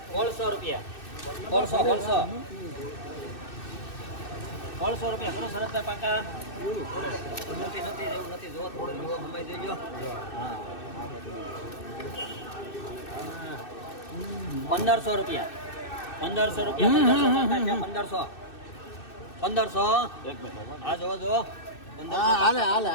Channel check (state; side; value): late; right; 2.6 ms